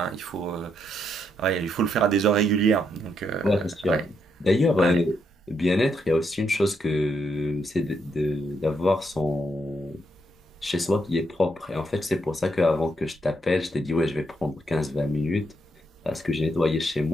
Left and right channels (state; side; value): normal; both; correlation 0.77